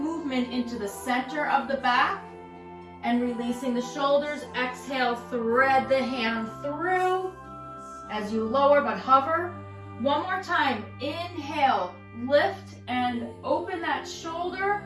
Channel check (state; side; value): identical; both; correlation 1.00